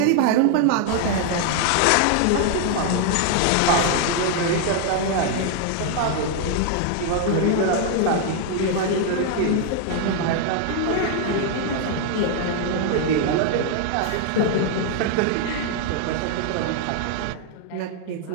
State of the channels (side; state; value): both; different; correlation 0.00